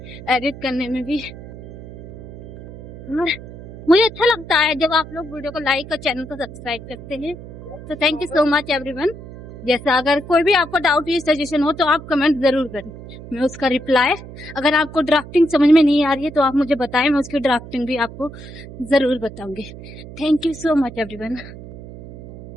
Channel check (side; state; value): right; noise; hum, 15 dB below the sound